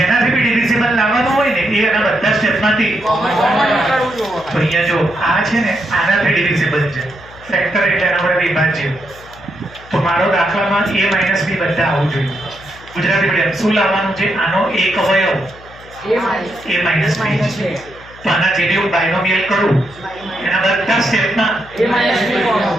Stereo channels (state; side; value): noise; left; hum, 21 dB below the sound